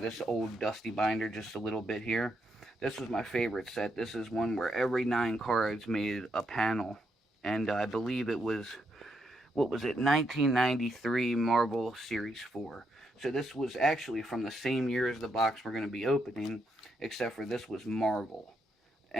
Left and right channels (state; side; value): normal; both; correlation 0.79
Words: old dusty binder just a little bit here. This was my favorite set. This is one where every 9 cards made a panel. And I believe it was, 1993 Marvel Series 4. So this was actually from the same year as the box we're going to be opening, except for this was Marvel.